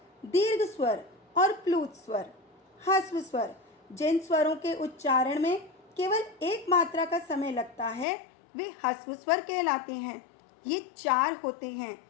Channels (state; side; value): drops out; right; at 8.1 s